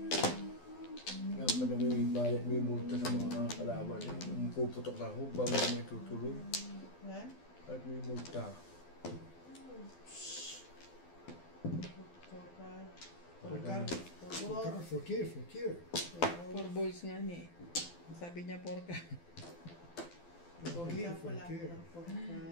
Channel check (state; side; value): late; right; 12 ms